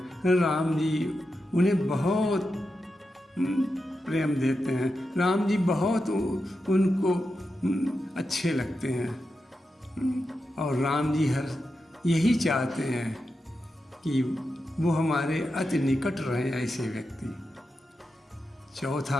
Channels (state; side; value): normal; both; correlation 0.89